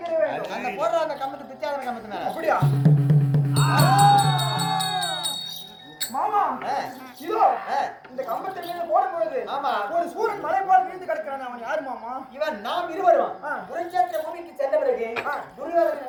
வேண்டும். அந்த போடுற அந்த கம்பத்து பிச்சாதன கம்பத்து மேல அப்படியா மாமா இதோ இந்த கம்பத்தில் மேல போடும் பொழுது ஆமா. ஒரு சூரன் மலை போல விழுந்து கிடக்கிறான். அவன் யாரு மாமா? இவன் நாம் இருவரும் ஆ. குருச்சேத்திர பூமிக்கு சென்ற பிறகு ஆ. துரியோதனன்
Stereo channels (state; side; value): identical; both; correlation 1.00